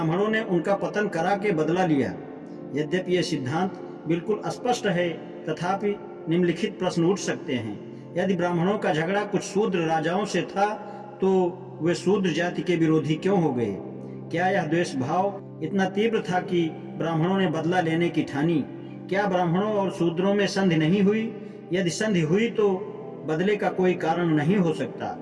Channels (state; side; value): identical; both; correlation 1.00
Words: ने उनका पतन करा के बदला लिया। यद्यपि यह सिद्धांत बिल्कुल स्पष्ट है, तथापि निम्नलिखित प्रश्न उठ सकते हैं। यदि ब्राह्मणों का झगड़ा कुछ शूद्र राजाओं से था, तो वे शूद्र जाति के विरोधी क्यों हो गए? क्या यह द्वेष भाव इतना तीव्र था कि ब्राह्मणों ने बदला लेने की ठानी? क्या ब्राह्मणों और शूद्रों में संधि नहीं हुई? यदि संधि हुई तो बदले का कोई कारण नहीं हो सकता।